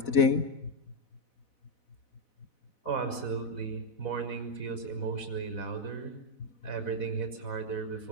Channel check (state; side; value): late; right; 4.0 ms